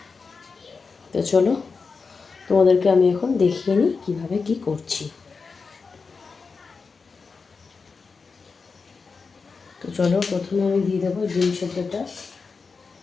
তো চলো তোমাদেরকে আমি এখন দেখিয়ে নিই কীভাবে কী করছি। তো চলো প্রথমে আমি দিয়ে দেবো ডিম সেদ্ধটা।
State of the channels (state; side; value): quieter; right; 4.8 dB